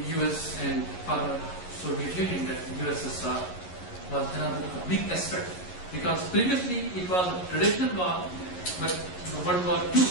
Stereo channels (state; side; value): late; right; 11 ms